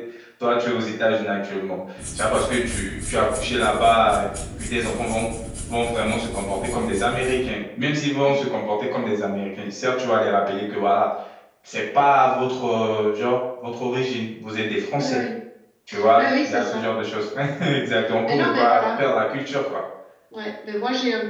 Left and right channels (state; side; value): identical; both; correlation 1.00